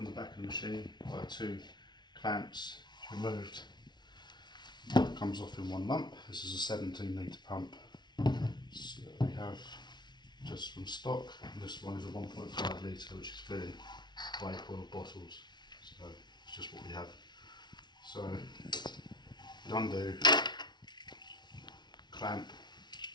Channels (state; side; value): late; right; 0.20 ms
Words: the back of the machine by 2 clamps removed, it comes off in one lump. This is a 17 litre pump. So we have just from stock, and this one is a 1.5 litre, which is filling vape oil bottles. So it's just what we have. So undo clamp